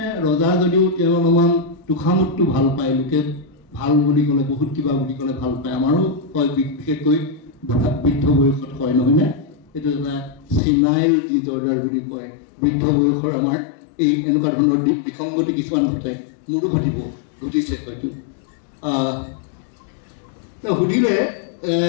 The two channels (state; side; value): drops out; right; at 10.6 s